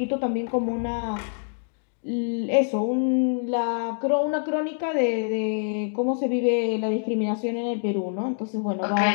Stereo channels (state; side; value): silent; right; digital silence